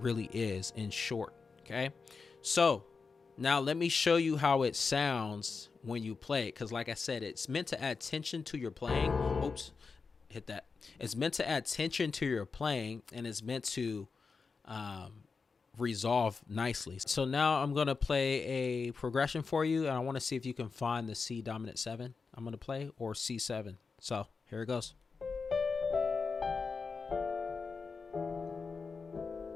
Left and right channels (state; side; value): quieter; right; 4.8 dB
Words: is in short. Okay, so now let me show you how it sounds when you play it. Because like I said, it's meant to add tension to your playing. Oops, hit that. It's meant to add tension to your playing, and it's meant to resolve nicely. So now I'm going to play a progression for you, and I want to see if you can find the C dominant 7 I'm going to play, or C7. So here it goes.